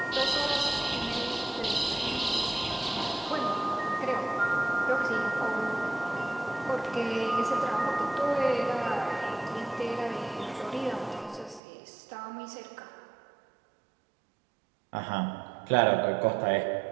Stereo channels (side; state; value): left; drops out; at 11.6 s